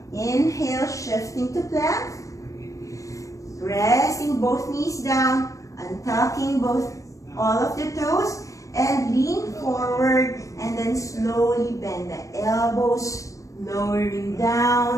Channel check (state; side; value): late; right; 0.16 ms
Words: Inhale, shifting to plank. Pressing both knees down, untucking all of the toes, and lean forward, and then slowly bend the elbows, lowering